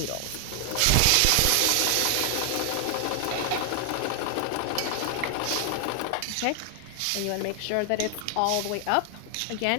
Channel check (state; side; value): different; both; correlation 0.00